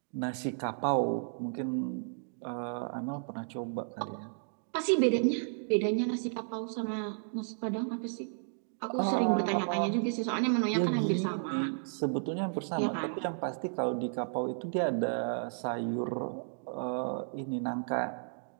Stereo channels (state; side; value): silent; left; digital silence